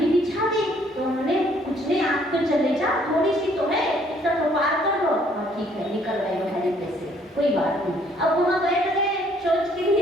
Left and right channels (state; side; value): normal; both; correlation 0.63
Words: बिछा दी, तो उन्होंने कुछ नहीं, आप तो चले जाओ, थोड़ी सी तो है, इतना तो पार कर लो। हाँ ठीक है, निकल गए हरी पे से, कोई बात नहीं। अब वहाँ बैठ गए, सोच के